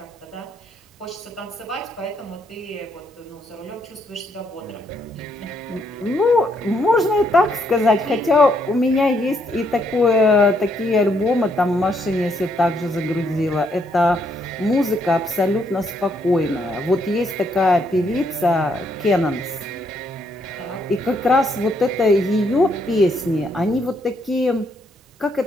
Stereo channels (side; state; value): both; normal; correlation 0.73